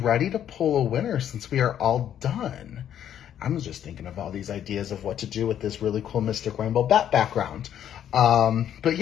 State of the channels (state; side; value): quieter; right; 10.1 dB